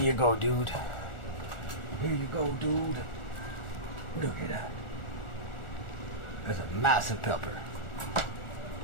go, dude. Here you go, dude. Look at that. That's a massive pepper.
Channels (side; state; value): right; late; 1.4 ms